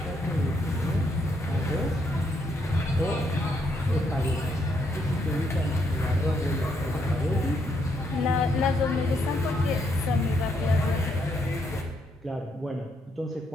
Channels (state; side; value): normal; both; correlation 0.75